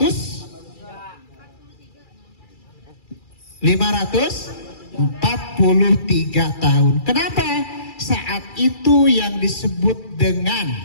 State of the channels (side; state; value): right; late; 2.3 ms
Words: tahun. Kenapa? Saat itu yang disebut dengan